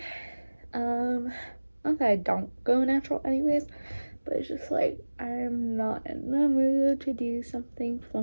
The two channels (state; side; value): inverted; both; correlation -1.00